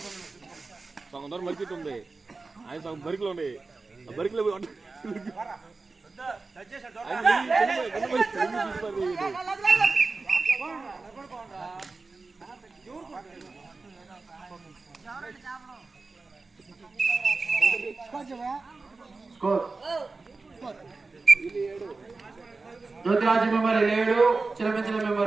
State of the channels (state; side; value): quieter; left; 3.8 dB